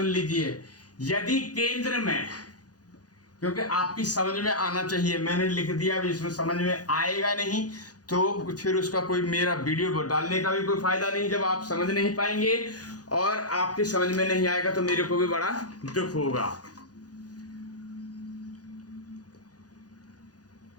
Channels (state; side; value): late; right; 0.68 ms